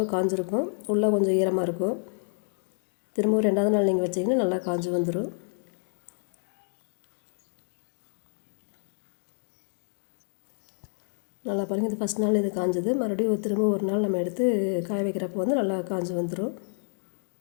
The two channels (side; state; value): right; silent; digital silence